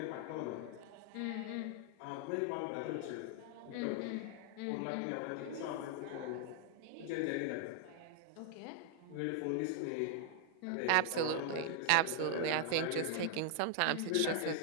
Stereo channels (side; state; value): both; different; correlation 0.00